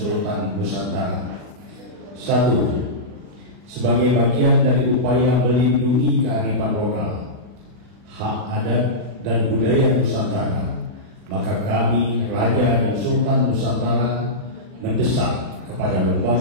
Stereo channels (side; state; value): left; late; 40 ms